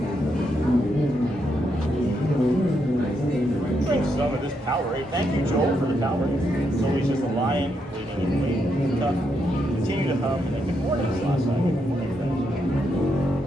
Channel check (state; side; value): normal; both; correlation 0.80